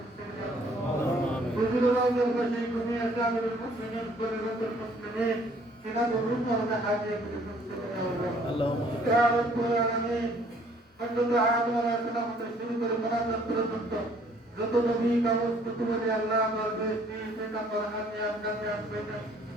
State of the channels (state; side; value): normal; both; correlation 0.60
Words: حضور الله البشير جميع سائر المؤمنين كل المسلمين سنة الرسل ونحاجة اللهم يا رب العالمين حمد العالم ولا سلام تشريك المناسب برسولته যত নবী কাগজ কুতুবে আল্লাহ আমার বেশি সেটা পড়ান নিয়াম কামিয়াব করে